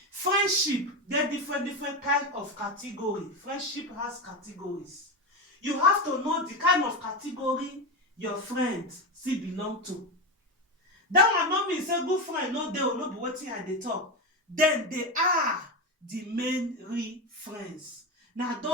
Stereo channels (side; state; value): both; normal; correlation 0.16